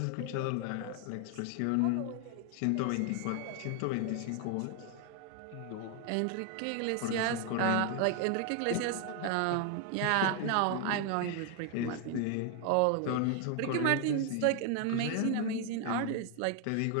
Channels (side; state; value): both; different; correlation 0.00